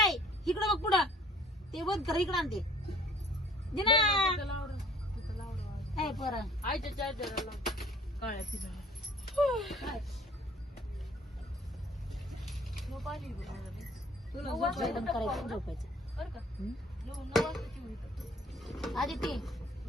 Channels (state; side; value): normal; both; correlation 0.55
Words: इकडं बघ पुढं ते बघ कर इकडं आणते दे ना काय पोरा आईच्या चार्जरला काळ्या तिला जेवण करायचं झोपायचं बरं का 9 वाजताची होईल आधी